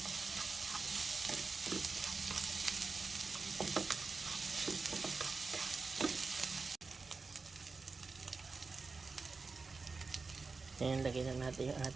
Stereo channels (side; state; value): left; quieter; 4.3 dB